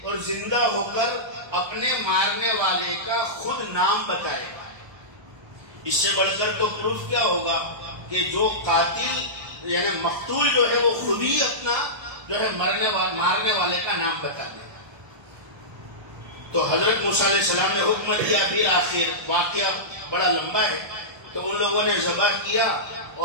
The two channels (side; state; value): left; late; 1.3 ms